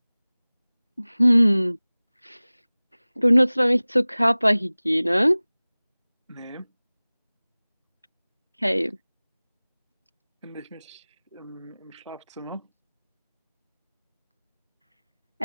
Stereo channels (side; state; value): both; inverted; correlation -1.00